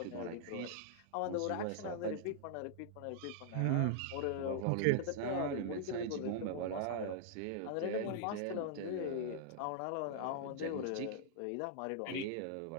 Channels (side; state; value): both; different; correlation -0.01